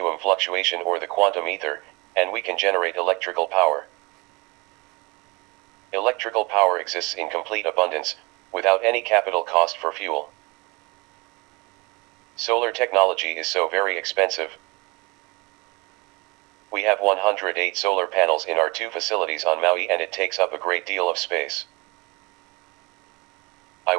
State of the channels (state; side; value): quieter; left; 26.5 dB